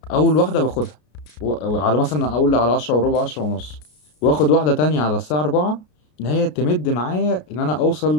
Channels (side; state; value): right; late; 33 ms